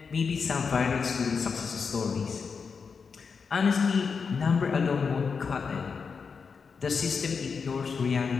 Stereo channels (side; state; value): right; quieter; 5.5 dB